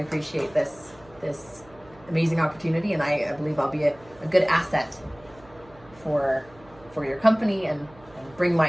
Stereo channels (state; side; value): noise; right; hum, 25 dB below the sound